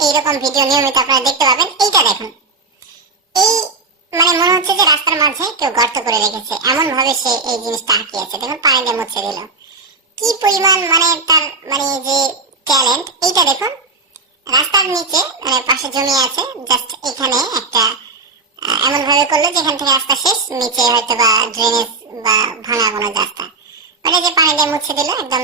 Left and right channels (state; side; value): quieter; left; 3.8 dB